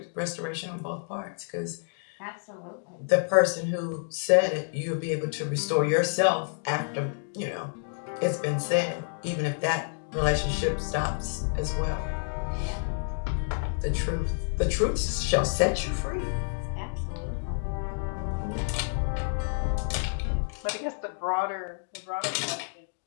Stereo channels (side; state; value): right; silent; digital silence